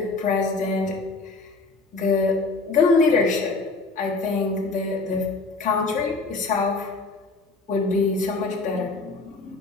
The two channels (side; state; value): right; quieter; 3.7 dB